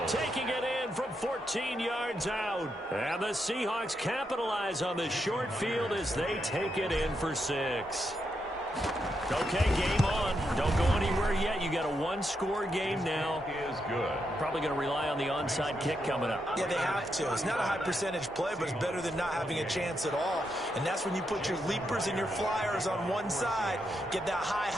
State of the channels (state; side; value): normal; both; correlation 0.82